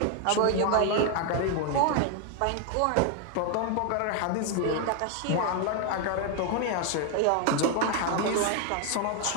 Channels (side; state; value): both; different; correlation 0.01